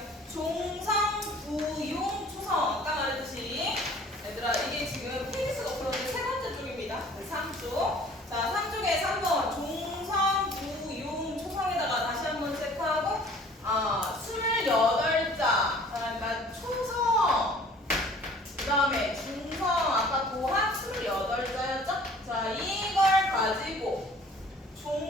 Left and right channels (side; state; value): both; normal; correlation 0.51